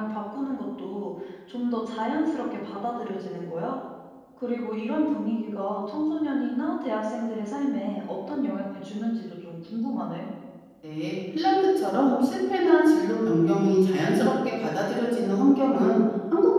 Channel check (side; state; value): both; identical; correlation 1.00